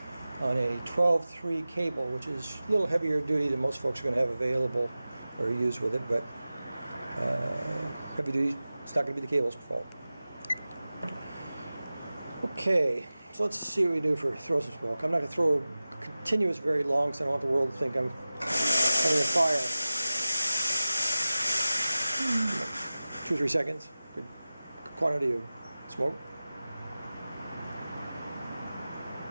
on a 12-3 cable, which is a little heavier duty than most folks are going to have available or use with it, but heavy duty, it's not going to be the cable's fault. Okay, so let's see what we do for throw some smoke. I'm not going to throw continuous very long because I don't want the world to think I'm having a fire. 2 or 3 seconds, good quantity of smoke.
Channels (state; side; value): inverted; both; correlation -0.96